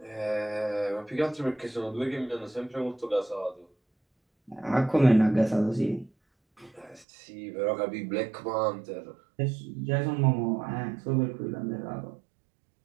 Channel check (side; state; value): left; drops out; at 7.1 s